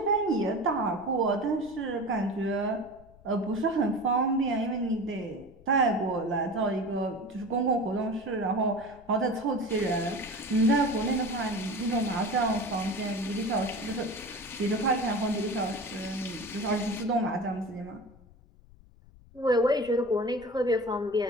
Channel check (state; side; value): noise; left; rumble, 24 dB below the sound